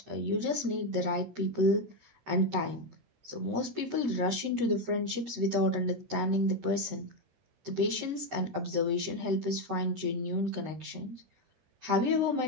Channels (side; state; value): left; late; 13 ms